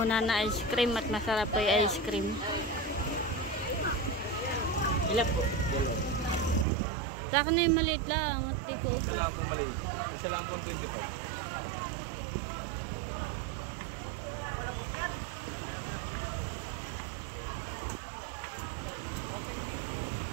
na ice cream at masarap po yung ice cream. Ilan po? Sa akin na yung maliit lang at di ko Isa ubo. lang po maliit. Isa lang po 25.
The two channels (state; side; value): drops out; left; at 6.7 s